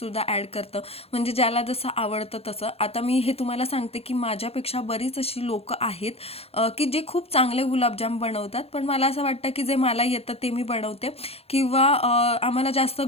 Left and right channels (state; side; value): late; right; 0.29 ms